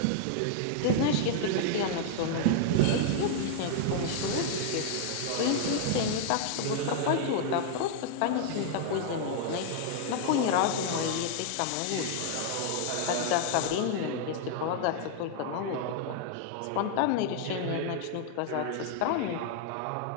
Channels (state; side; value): different; both; correlation -0.01